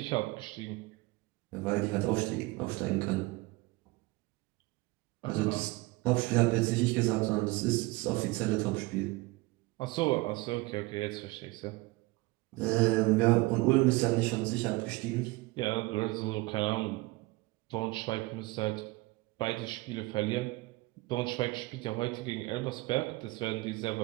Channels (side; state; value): left; quieter; 22.3 dB